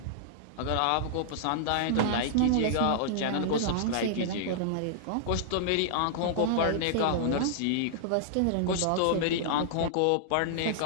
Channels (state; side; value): different; both; correlation -0.01